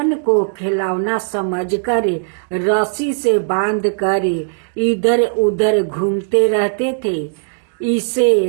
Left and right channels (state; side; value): silent; left; digital silence